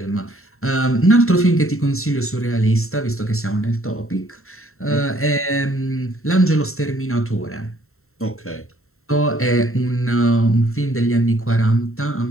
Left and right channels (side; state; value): right; late; 0.62 ms